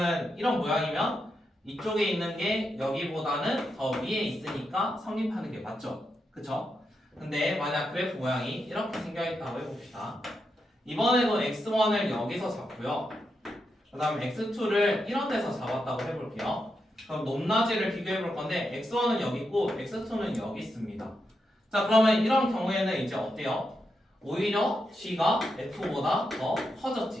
이런 모양이면 이쪽에 있는 게 여기보다는 더 위에 있으니까 성립하는 게 맞죠? 그쵸? 근데 만약 그래프 모양이 이렇게 생겨있다고 해봅시다. 이번에도 x1을 여기서 잡고요. 그 다음에 x2를 이런 데서 잡았다고 해볼게요. 그럼 높낮이를 비교해 볼 건데 x1은 여기 있고 x2는 여기 있습니다. 자, 그러면 이런 경우에는 이제 어때요? 오히려 g가 f보다 더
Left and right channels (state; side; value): normal; both; correlation 0.85